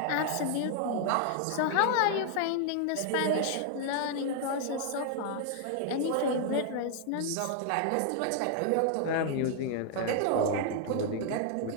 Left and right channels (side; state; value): both; different; correlation 0.00